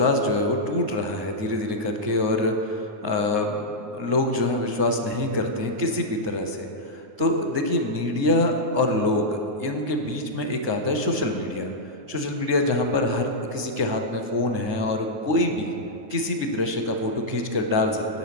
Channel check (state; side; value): late; left; 9.5 ms